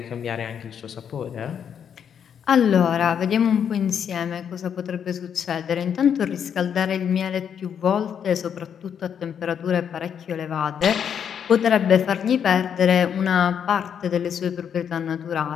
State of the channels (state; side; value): quieter; right; 8.1 dB